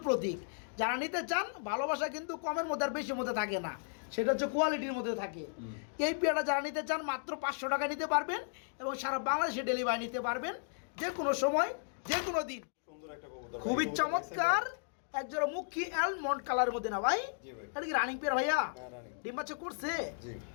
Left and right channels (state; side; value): silent; right; digital silence